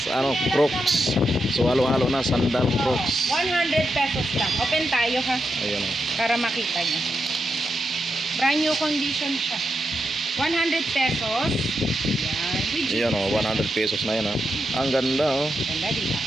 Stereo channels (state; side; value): normal; both; correlation 0.85